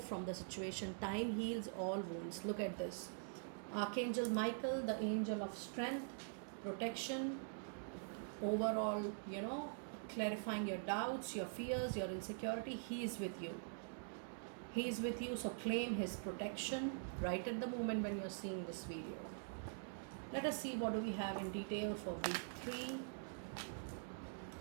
from the situation. Time heals all wounds. Look at this. Archangel Michael, the angel of strength, protection, overall, clarifying your doubts, your fears, your insecurity. He is with you. He is with you, so claim his protection right at the moment when you're seeing this video. Let us see what do we have in detail for week 3.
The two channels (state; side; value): silent; left; digital silence